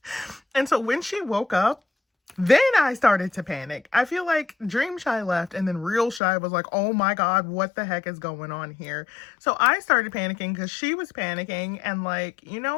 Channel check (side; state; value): right; drops out; at 6.2 s